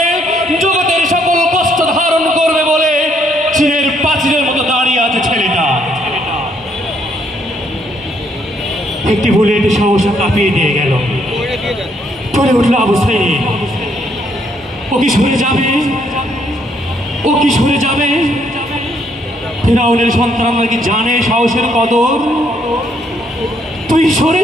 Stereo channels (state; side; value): normal; both; correlation 0.70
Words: জগতের সকল কষ্ট ধারণ করবে বলে চীনের প্রাচীরের মতো দাঁড়িয়ে আছে ছেলেটা। একটি বুলেট সহসা কাঁপিয়ে দিয়ে গেল। পড়ে উঠল আবু সাইদ। ও কি সরে যাবে? ও কি সরে যাবে? ফিরাউনের সন্তানরা কি জানে সাহসের কদর? তুই সরে